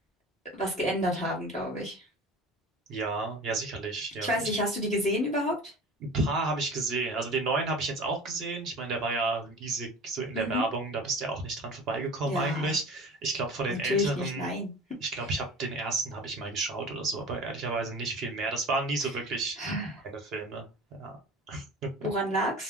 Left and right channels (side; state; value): both; normal; correlation 0.38